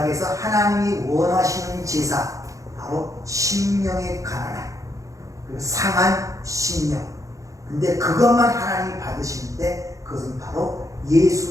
하나님이 원하시는 제사, 바로 심령의 가난함, 그리고 상한 심령. 근데 그것만 하나님이 받으시는데 그것은 바로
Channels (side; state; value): left; late; 0.16 ms